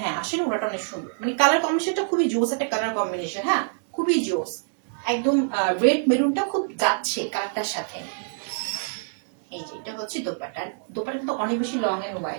হ্যাঁ আসলে ওনাটা অনেক সুন্দর, মানে কালার কম্বিনেশনটা খুবই জোস একটা কালার কম্বিনেশন, হ্যাঁ খুবই জোস, একদম রেড মেরুনটা খুব যাচ্ছে কালারটার সাথে। এই যে এটা হচ্ছে দোপাট্টা, দোপাট্টা কিন্তু অনেক বেশি লং এন্ড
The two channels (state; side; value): silent; left; digital silence